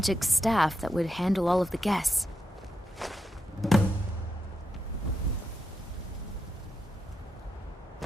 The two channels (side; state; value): both; normal; correlation 0.85